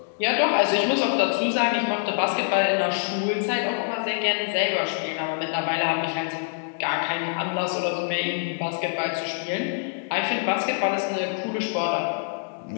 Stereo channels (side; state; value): right; silent; digital silence